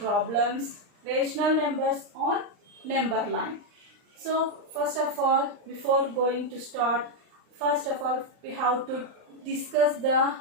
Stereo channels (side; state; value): left; late; 39 ms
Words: rational numbers on number line. So first of all, before going to start, first of all we have to discuss the